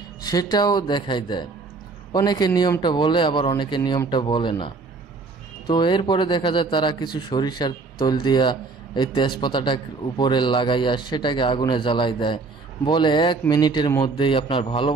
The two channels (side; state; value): left; quieter; 4.1 dB